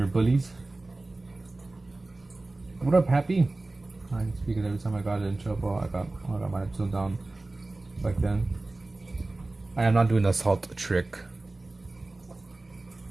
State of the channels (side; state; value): left; quieter; 3.0 dB